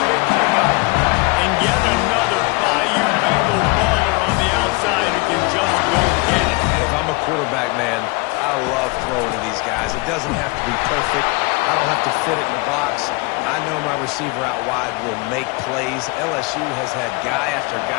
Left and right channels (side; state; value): right; quieter; 26.6 dB